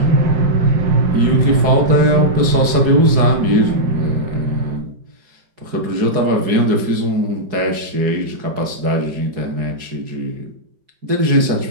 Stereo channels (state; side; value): late; left; 4.8 ms